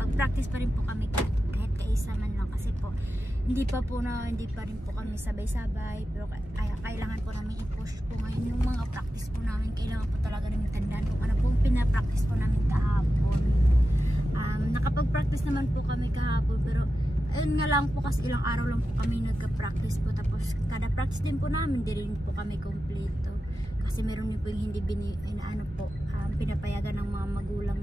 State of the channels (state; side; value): normal; both; correlation 0.91